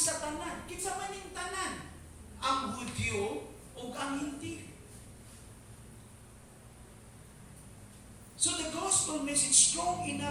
tanan. Kinsa man ning tanan? Ang Hudyo ug ang Hintil. So the gospel message strong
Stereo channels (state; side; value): identical; both; correlation 1.00